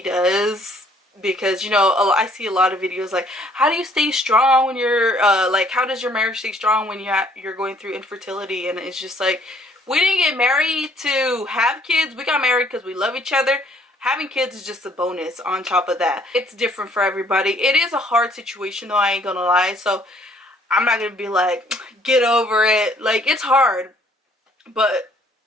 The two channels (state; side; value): normal; both; correlation 0.62